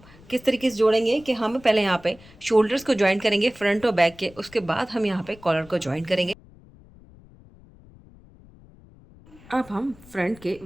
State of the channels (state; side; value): noise; left; rumble, 24 dB below the sound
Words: किस तरीके से जोड़ेंगे कि हम पहले यहाँ पे शोल्डर्स को ज्वाइन करेंगे फ्रंट और बैक के, उसके बाद हम यहाँ पे कॉलर को ज्वाइन करेंगे। अब हम फ्रंट के